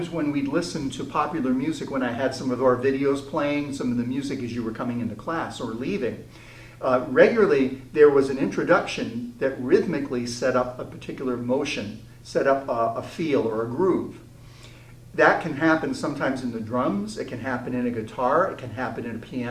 when we'd listen to popular music, when I had some of our videos playing, some of the music as you were coming into class or leaving, regularly there was an introduction that rhythmically set up a particular motion, set up a feel or a groove. That can happen sometimes in the drums, it can happen in a guitar, it can happen in a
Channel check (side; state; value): both; identical; correlation 1.00